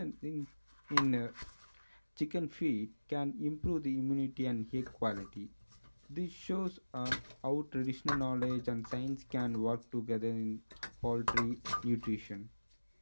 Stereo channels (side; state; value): both; inverted; correlation -1.00